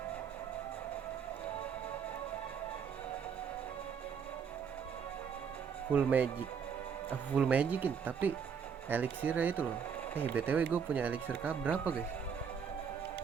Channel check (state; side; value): quieter; left; 6.8 dB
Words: Full magic. Full magicin tapi elixirnya itu loh. BTW gue punya elixir berapa guys?